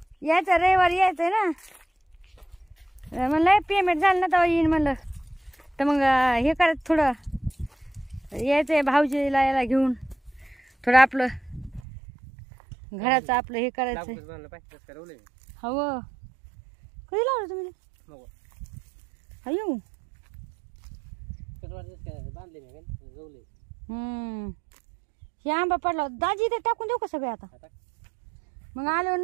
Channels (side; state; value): left; drops out; at 11.8 s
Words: यायचं रविवारी यायचंय ना. म्हणलं पेमेंट झालं ना तेव्हा येईन म्हणलं. तर मग हे करायचं थोडं, यायचंय भाऊजीला याला घेऊन. थोडं आपलं घराचं आपलं हे करायचंय. हो कधी लावलं तुम्ही? अयो हे आंबा पडला दाजी, ते टाकून देऊ का सगळे आता? मग आल्यावर